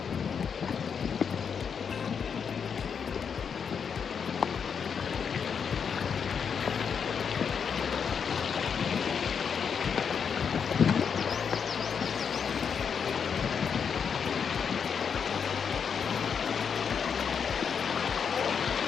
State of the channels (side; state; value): right; quieter; 6.7 dB